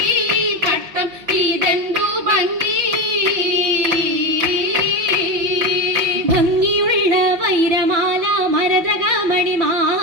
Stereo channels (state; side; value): late; left; 5.5 ms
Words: ഭംഗിയുള്ള വൈരമാല മരതക